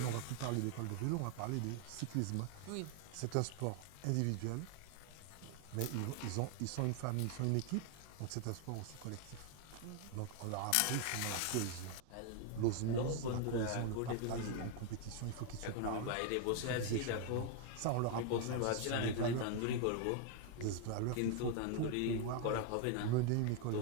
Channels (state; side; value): different; both; correlation 0.00